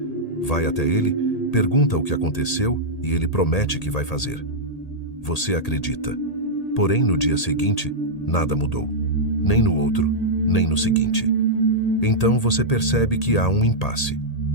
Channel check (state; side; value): late; right; 1.8 ms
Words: Vai até ele, pergunta o que aconteceu e ele promete que vai fazer. Você acredita. Porém, no dia seguinte, nada mudou. Nem no outro, nem no seguinte. Então você percebe que há um impasse.